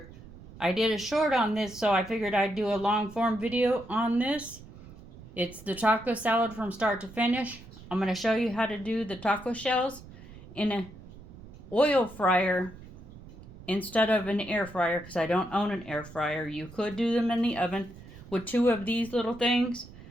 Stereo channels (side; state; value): right; noise; rumble, 18 dB below the sound